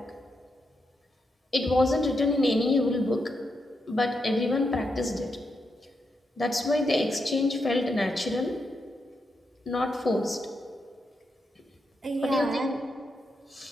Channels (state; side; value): normal; both; correlation 0.83